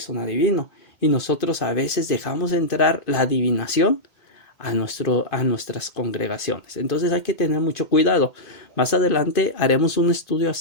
un adivino. Y nosotros a veces dejamos entrar la adivinación a nuestras congregaciones. Entonces hay que tener mucho cuidado. Más adelante haremos un estudio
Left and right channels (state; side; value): late; right; 2.1 ms